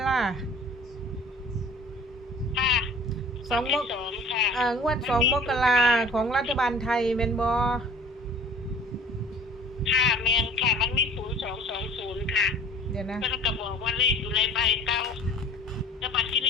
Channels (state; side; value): normal; both; correlation 0.47